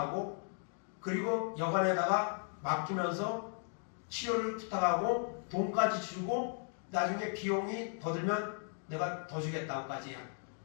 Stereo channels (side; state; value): right; silent; 54 dB below the other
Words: 그리고 여관에다가 맡기면서 치료를 부탁하고 돈까지 주고 나중에 비용이 더 들면 내가 더 주겠다고까지요.